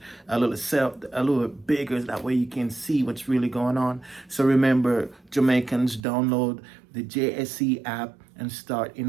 a little bigger that way you can see what's really going on. So remember, Jamaicans, download the JSE app and start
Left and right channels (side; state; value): left; drops out; at 6.1 s